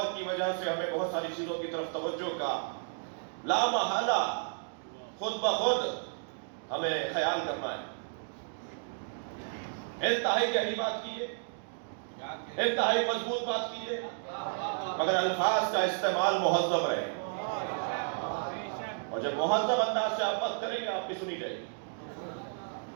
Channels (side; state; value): left; silent; digital silence